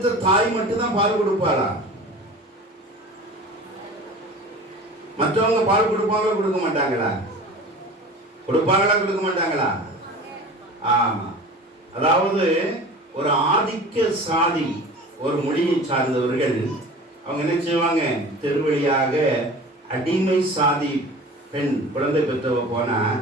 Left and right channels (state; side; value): normal; both; correlation 0.39